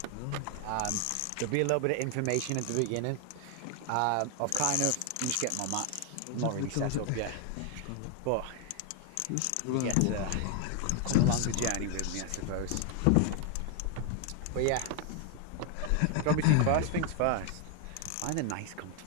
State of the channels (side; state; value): both; different; correlation 0.00